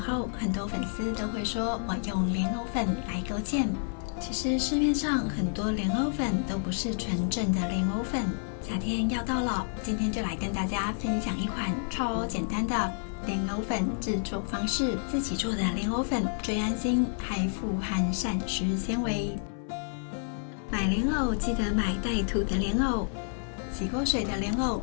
很多粉丝都会说我用莲藕粉来勾芡。其实市面上很多莲藕粉都不是纯正的莲藕粉。夏天要到了，今天就来跟大家分享一款超简单的莲藕粉制作方式。自己做的莲藕粉最安心，还富含膳食纤维。买莲藕记得买带土的莲藕。洗过水的莲藕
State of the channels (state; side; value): silent; right; 58 dB below the other